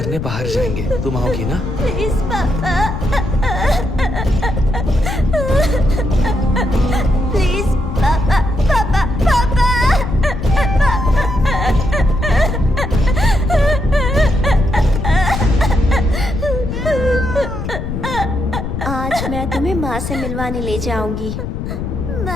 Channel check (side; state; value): left; noise; rumble, 5 dB below the sound